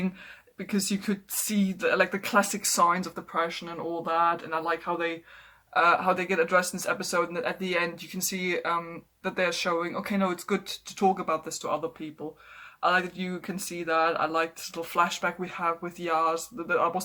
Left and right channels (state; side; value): identical; both; correlation 1.00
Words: because you could see the classic signs of depression and all that, and I like how they get addressed in this episode. And at the end, you can see that they're showing, okay, no, it's good to talk about this to other people. I like that you can see that. I like this little flashback we have with Yaz. That